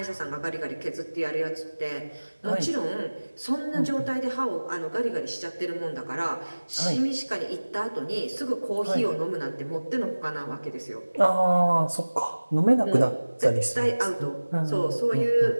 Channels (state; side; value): inverted; both; correlation -1.00